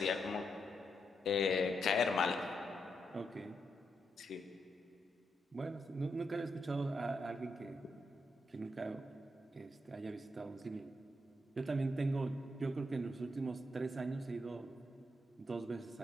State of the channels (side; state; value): both; normal; correlation 0.81